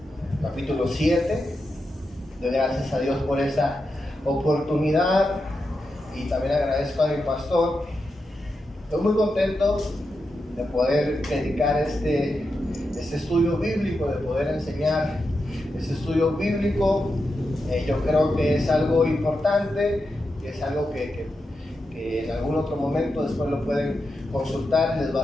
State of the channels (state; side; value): normal; both; correlation 0.88